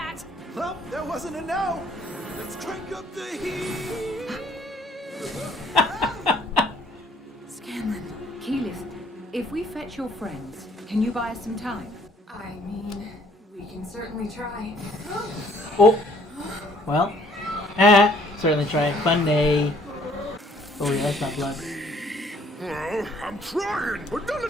Well, that wasn't a no. Let's crank up the heat. Scanlan, Keyleth, if we fetch your friends, can you buy us some time? I mean, we can certainly try. Oh. Well. Certainly try. Fun day. Oh, yeah, that's not blood. Well, I'm trying, but none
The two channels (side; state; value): both; normal; correlation 0.61